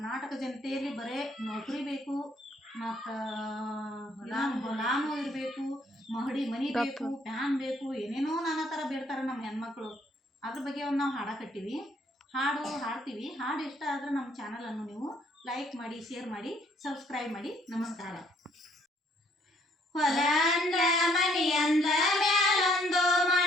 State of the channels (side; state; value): both; normal; correlation 0.66